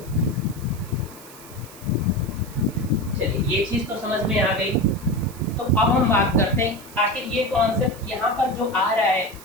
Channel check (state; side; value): noise; right; hiss, 19 dB below the sound